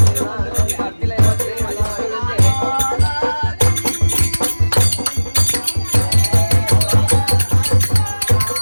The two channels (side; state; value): both; inverted; correlation -1.00